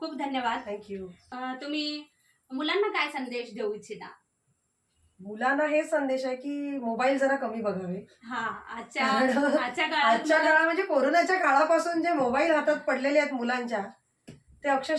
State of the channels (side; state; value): both; identical; correlation 1.00